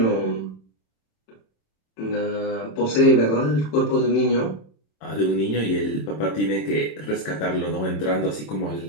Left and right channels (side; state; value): right; late; 27 ms